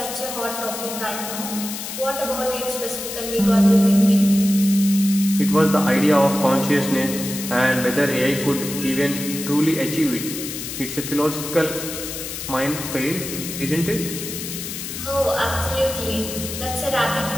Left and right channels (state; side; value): noise; left; hiss, 7 dB below the sound